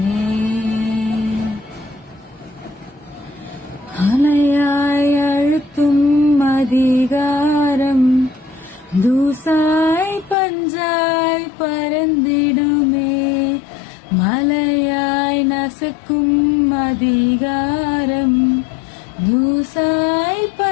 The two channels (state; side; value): drops out; right; at 10.4 s